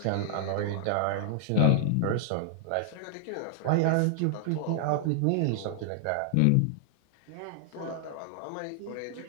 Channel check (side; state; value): both; different; correlation -0.01